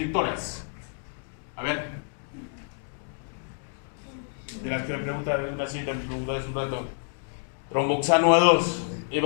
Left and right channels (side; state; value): right; silent; digital silence